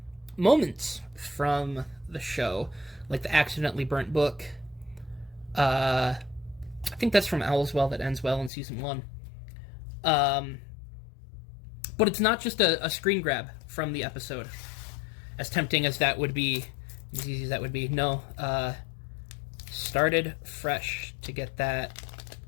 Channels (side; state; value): right; drops out; at 8.5 s